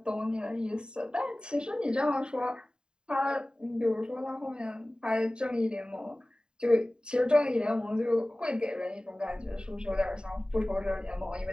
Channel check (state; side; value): late; left; 0.048 ms